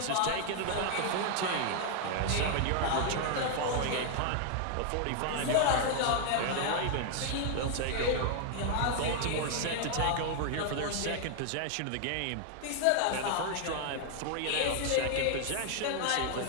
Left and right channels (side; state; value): both; different; correlation 0.00